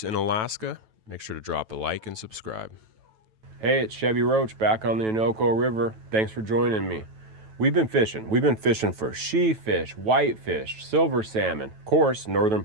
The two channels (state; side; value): late; left; 9.2 ms